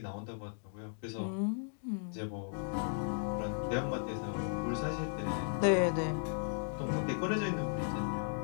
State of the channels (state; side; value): silent; right; digital silence